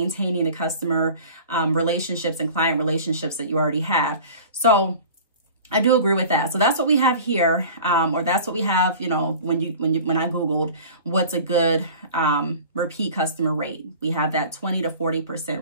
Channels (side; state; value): both; inverted; correlation -0.42